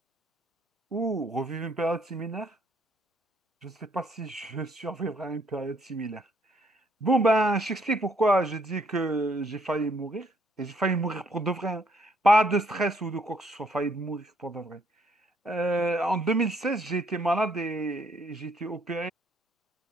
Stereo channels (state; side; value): normal; both; correlation 0.68